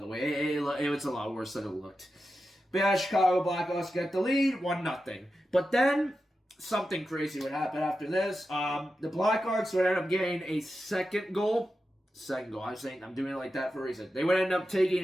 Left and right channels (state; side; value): normal; both; correlation 0.91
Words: way. It was a lot worse than it looked. But yeah, Chicago Blackhawks get the lead, 1-0. But then something crazy would happen after this. The Blackhawks would end up getting a second goal. I'm doing it like that for a reason. They would end up taking